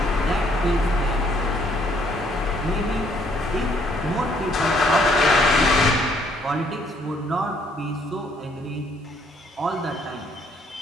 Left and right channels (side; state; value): both; normal; correlation 0.66